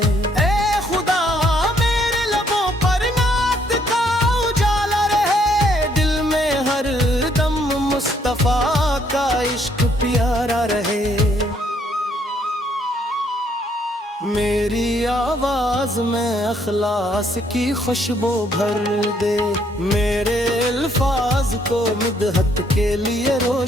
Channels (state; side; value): normal; both; correlation 0.69